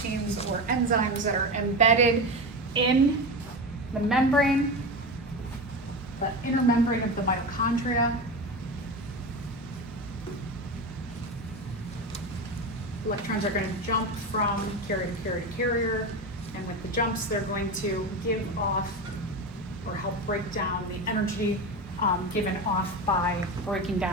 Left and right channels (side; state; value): both; normal; correlation 0.22